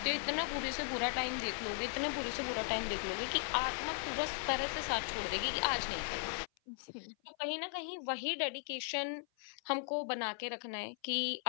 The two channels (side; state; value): right; silent; 53 dB below the other